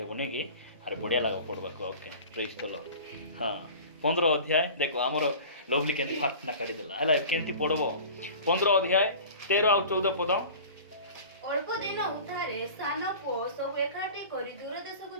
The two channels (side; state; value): both; inverted; correlation -0.40